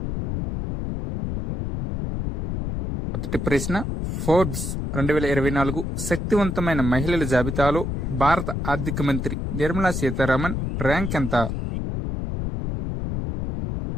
మొదటి ప్రశ్న, ఫోర్బ్స్ 2024 శక్తివంతమైన మహిళల జాబితాలో భారత ఆర్థిక మంత్రి నిర్మలా సీతారామన్ ర్యాంక్ ఎంత?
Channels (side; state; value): left; noise; rumble, 3 dB below the sound